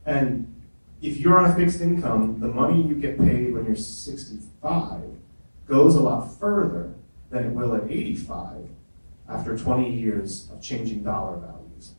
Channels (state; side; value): inverted; both; correlation -1.00